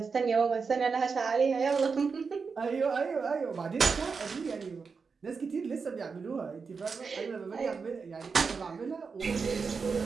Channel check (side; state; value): left; quieter; 5.2 dB